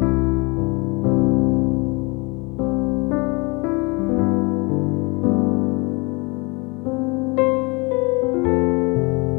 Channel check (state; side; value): quieter; right; 28.4 dB